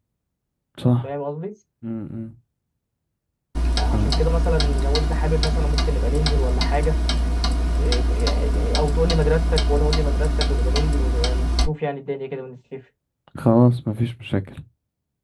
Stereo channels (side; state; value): both; identical; correlation 1.00